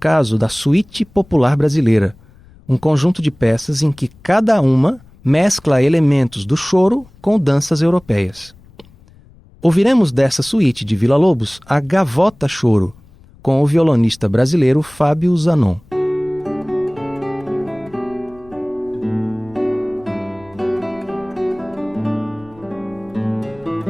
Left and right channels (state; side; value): noise; left; rumble, 26 dB below the sound